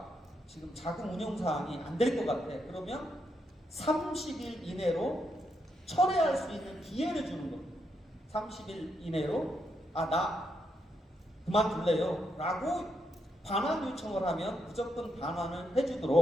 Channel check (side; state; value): both; normal; correlation 0.80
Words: 지금 자금 운영 사항이 안 될 것 같아. 그러면 30일 이내로 철회할 수 있는 기회를 주는 겁니다. 30일 이내로 나 그만둘래요 라고 반환 요청을 하면 무조건 반환을